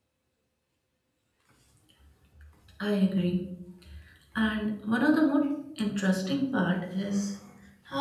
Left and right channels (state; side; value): identical; both; correlation 1.00